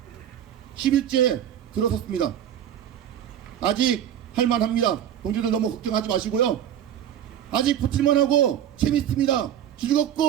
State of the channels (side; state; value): left; quieter; 10.3 dB